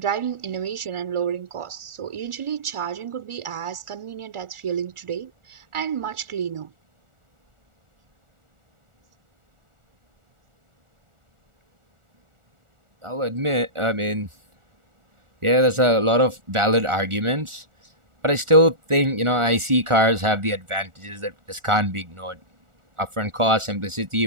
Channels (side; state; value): left; late; 1.4 ms